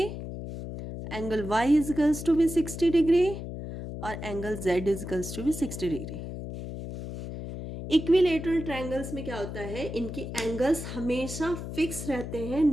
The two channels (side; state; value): left; noise; hum, 8 dB below the sound